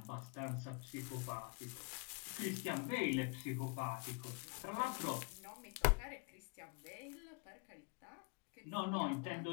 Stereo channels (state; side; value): quieter; right; 32.6 dB